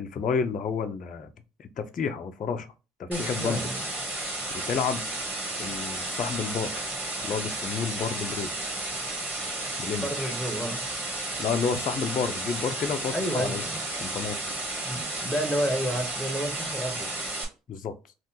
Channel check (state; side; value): normal; both; correlation 0.49